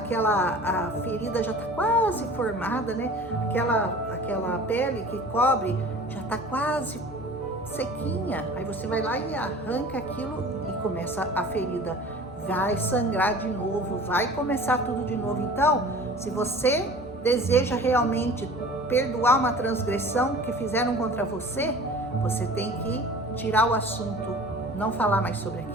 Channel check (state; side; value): normal; both; correlation 0.43